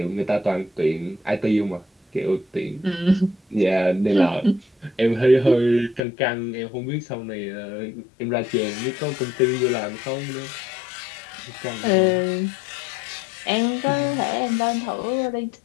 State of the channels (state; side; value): drops out; right; at 6.0 s